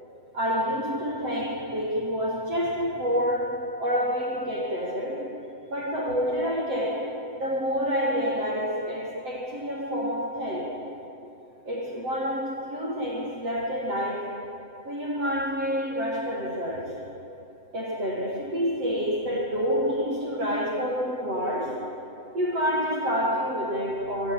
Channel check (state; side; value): late; left; 7.8 ms